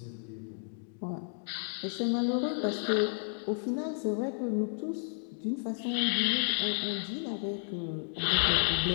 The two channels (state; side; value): silent; right; digital silence